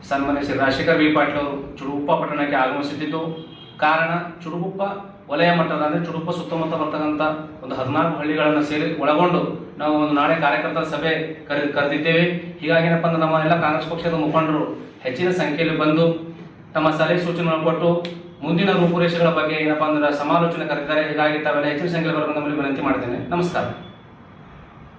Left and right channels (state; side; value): identical; both; correlation 1.00